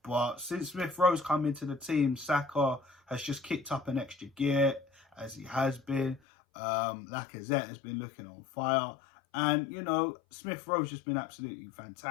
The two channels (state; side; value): drops out; right; at 6.2 s